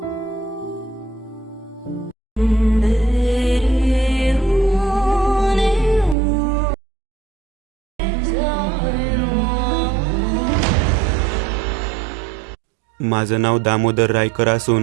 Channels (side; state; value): left; drops out; at 6.2 s